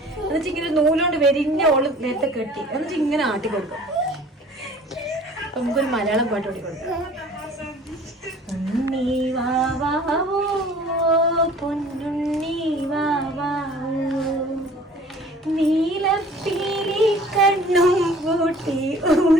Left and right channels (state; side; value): normal; both; correlation 0.49